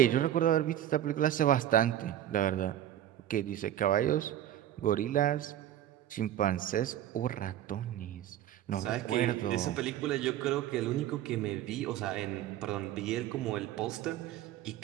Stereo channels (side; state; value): left; quieter; 11.8 dB